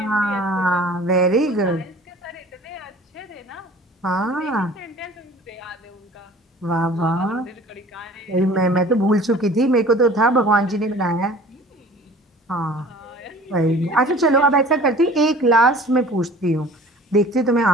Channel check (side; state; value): both; normal; correlation 0.46